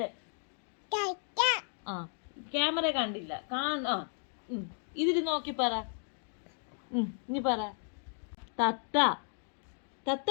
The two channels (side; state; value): right; silent; 55 dB below the other